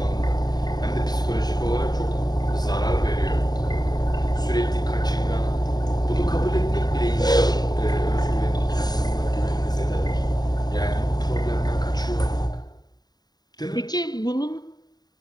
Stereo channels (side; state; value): right; late; 0.20 ms